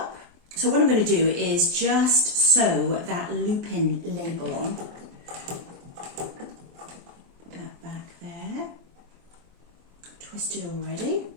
So what I'm going to do is just sew that loop-in label on. Put that back there. Twisted already.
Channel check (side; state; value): left; late; 23 ms